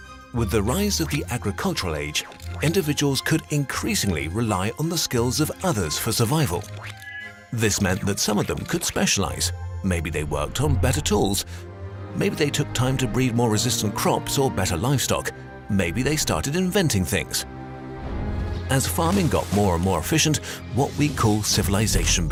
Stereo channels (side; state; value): both; identical; correlation 1.00